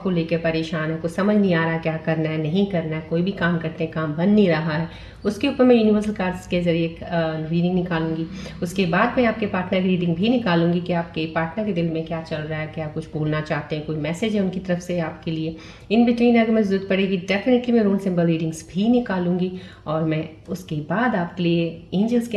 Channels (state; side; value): identical; both; correlation 1.00